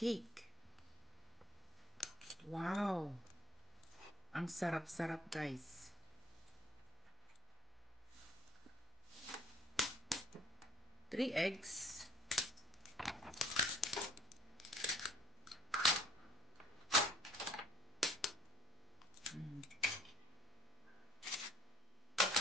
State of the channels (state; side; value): normal; both; correlation 0.58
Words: Wow. Ang sarap-sarap, guys. 3 eggs.